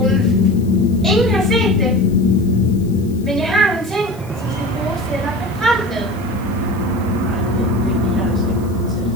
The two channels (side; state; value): left; noise; hiss, 25 dB below the sound